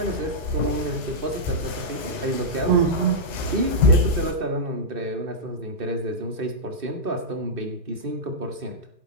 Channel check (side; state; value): left; late; 2.4 ms